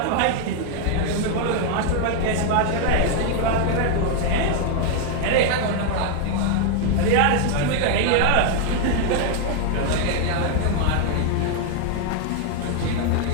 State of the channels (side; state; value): both; different; correlation 0.00